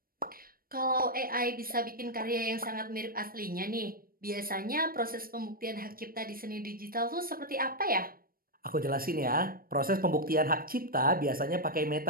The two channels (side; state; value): left; late; 0.42 ms